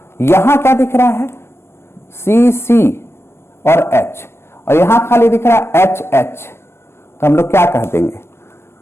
यहां क्या दिख रहा है, CC और H, और यहां खाली दिख रहा है HH। तो हम लोग क्या कह देंगे,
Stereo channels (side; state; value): right; late; 0.12 ms